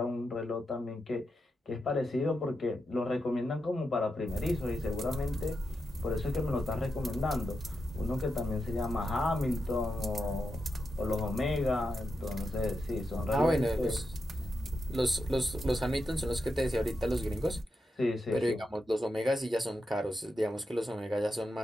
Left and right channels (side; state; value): both; normal; correlation 0.87